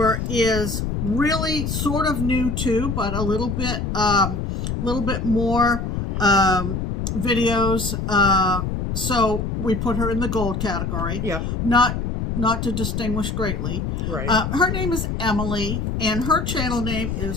is really sort of new too, but a little bit more videos. So we put her in the gold category. Yep. Not to distinguish greatly. Right. Her name is Emily, and her channel name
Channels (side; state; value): left; noise; rumble, 2 dB below the sound